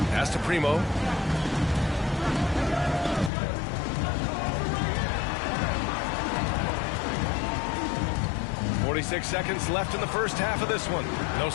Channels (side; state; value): right; drops out; at 3.3 s